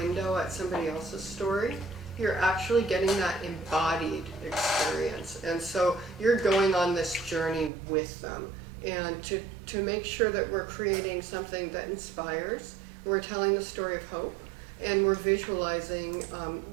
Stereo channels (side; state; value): left; drops out; at 7.7 s